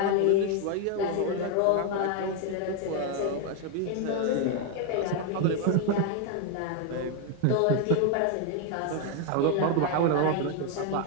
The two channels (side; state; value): both; different; correlation 0.01